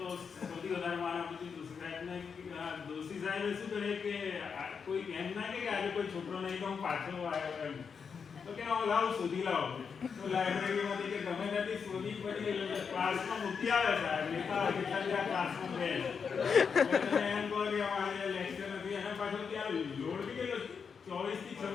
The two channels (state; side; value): quieter; right; 6.1 dB